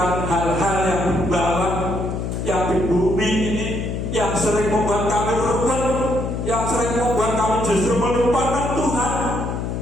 hal-hal yang di bawah, yang di bumi ini, yang sering membuat kami berubah, yang sering membuat kami justru melupakan Tuhan.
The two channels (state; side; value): noise; left; hum, 3 dB below the sound